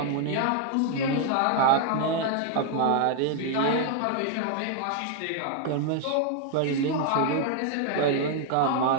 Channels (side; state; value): both; different; correlation 0.00